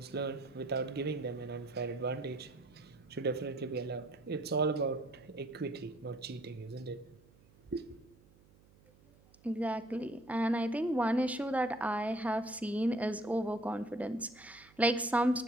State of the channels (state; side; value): noise; right; hum, 28 dB below the sound